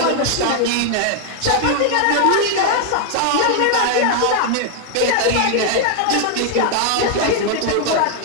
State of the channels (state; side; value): different; both; correlation 0.00